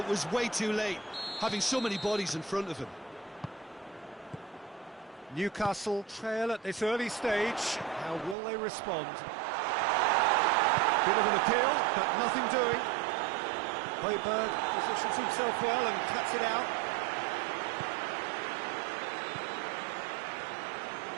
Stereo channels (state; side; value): drops out; left; at 8.3 s